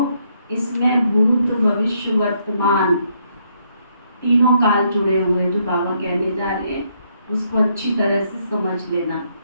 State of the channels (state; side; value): inverted; both; correlation -0.73